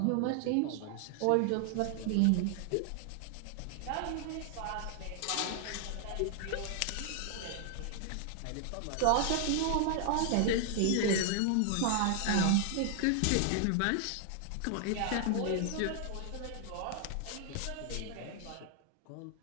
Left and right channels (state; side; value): different; both; correlation 0.00